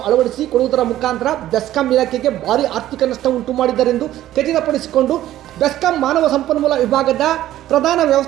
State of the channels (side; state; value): left; quieter; 13.6 dB